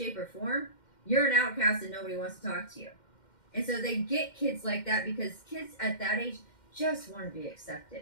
or form, you're an outcast and nobody wants to talk to you. And so they get kids like that because kids at that age just want to be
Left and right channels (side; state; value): right; late; 2.1 ms